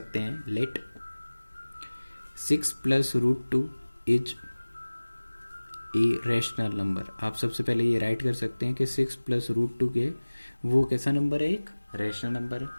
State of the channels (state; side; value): inverted; both; correlation -1.00